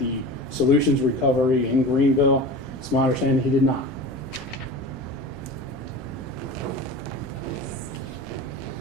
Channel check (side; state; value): both; normal; correlation 0.33